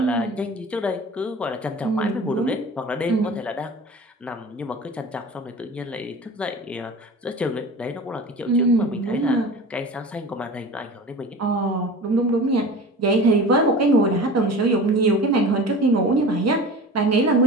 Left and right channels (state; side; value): normal; both; correlation 0.37